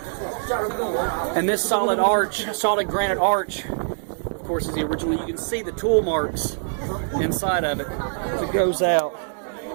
And this solid granite arch, of course, is the original. You can see the tool marks inside of it as it goes out.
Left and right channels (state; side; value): silent; left; digital silence